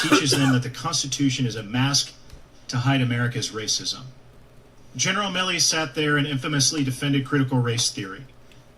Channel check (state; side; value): identical; both; correlation 1.00